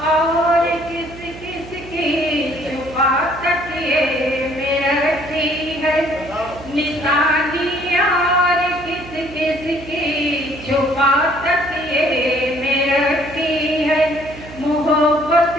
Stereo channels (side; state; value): right; noise; hum, 16 dB below the sound